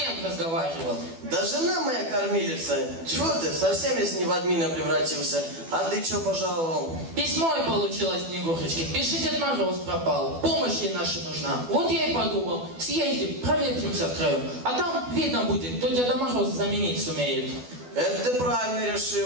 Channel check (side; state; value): left; late; 12 ms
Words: разговаривал? Да жена моя кормилица. Чего ты, совсем если не в админа превратился? А ты что пожаловал? Письмо и получилось Снегурочки. Пиши, Дед Мороз пропал. Помощь ей наша нужна. Вот я и подумал. Съездим, проветримся втроем. А там видно будет, кто Деда Мороза заменить сумеет. Это ты правильно